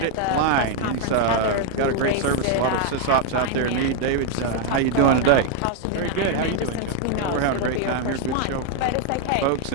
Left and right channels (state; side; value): different; both; correlation 0.00